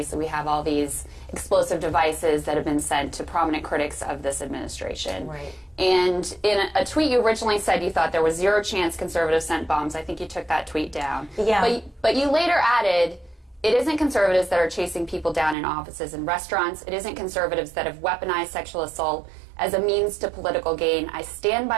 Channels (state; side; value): drops out; left; at 15.6 s